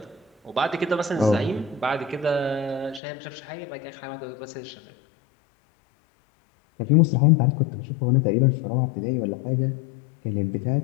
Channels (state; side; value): drops out; right; at 3.0 s